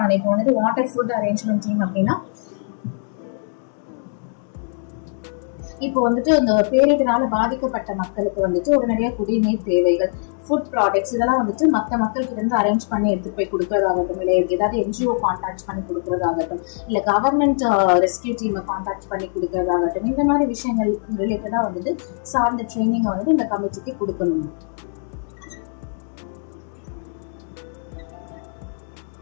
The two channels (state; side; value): silent; right; digital silence